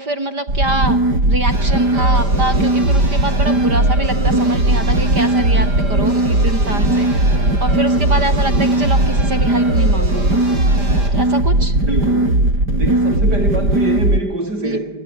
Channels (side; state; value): left; late; 5.0 ms